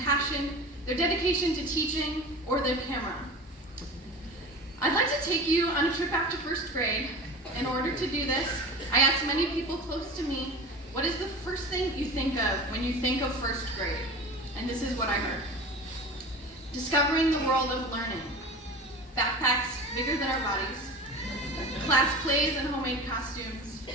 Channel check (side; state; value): both; normal; correlation 0.34